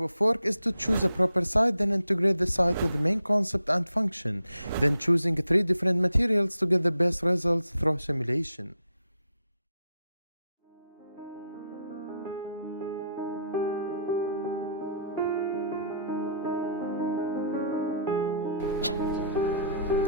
of work is to choose a proper site, then integrate the site with the main concept and function, then choosing 3 different materials to get the best results through simulation.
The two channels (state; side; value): inverted; both; correlation -0.70